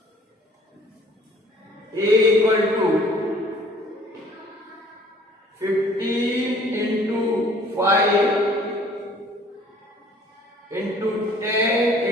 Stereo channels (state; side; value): normal; both; correlation 0.55